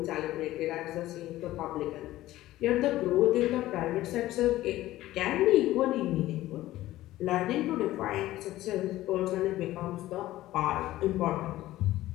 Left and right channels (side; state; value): right; quieter; 15.6 dB